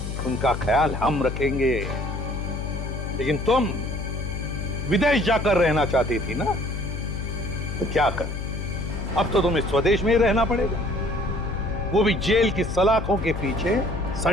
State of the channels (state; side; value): noise; left; hum, 5 dB below the sound